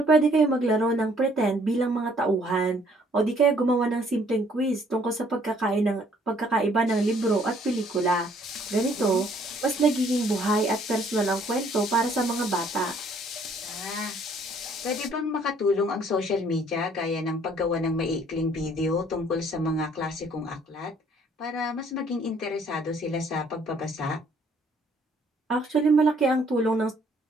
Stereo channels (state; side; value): normal; both; correlation 0.62